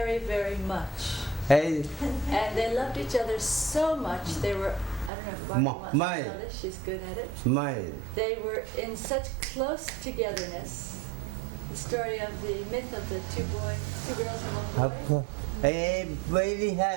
very much. Hey, And they loved each other so much, they were, I don't know if Barbara wants to mine. tell this, she's good at it. mine. They were in such close togetherness. The story of the myth of the two girls and one boy. Hey, very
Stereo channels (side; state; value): left; drops out; at 5.1 s